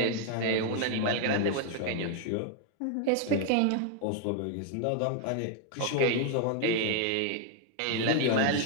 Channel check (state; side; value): different; both; correlation 0.00